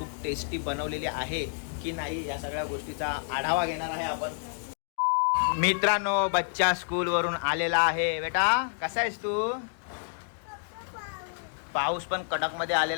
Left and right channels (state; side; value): silent; right; digital silence